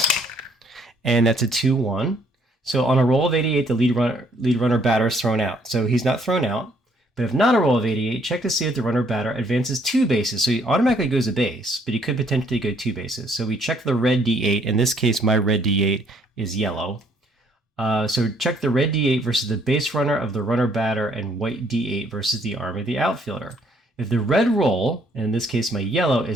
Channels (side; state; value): both; normal; correlation 0.66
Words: and that's a 2-1. So on a roll of 88, the lead runner batter is thrown out. So he's not thrown out. But if not a roll of 88, check to see if the runner batter advances 2 bases. So he automatically goes a base, but he could potentially go 2 bases. So we check the red D8. In this case, my red D8 is yellow. So check the red D8 versus the base runner of the runner batter, and white D8 versus the arm of the outfielder. If the red roll, and in this case my yellow,